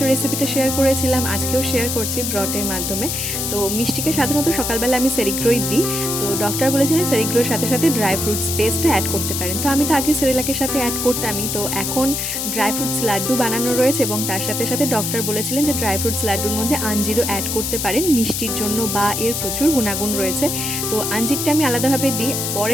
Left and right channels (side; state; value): left; noise; hiss, 2 dB below the sound